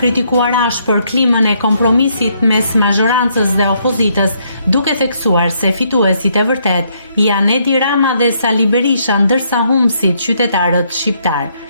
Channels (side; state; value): both; inverted; correlation -0.72